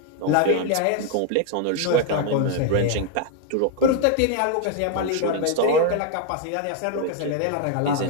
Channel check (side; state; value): both; different; correlation 0.01